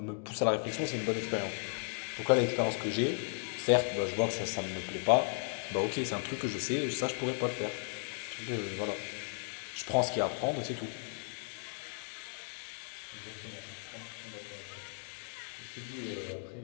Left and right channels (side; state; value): right; silent; 54 dB below the other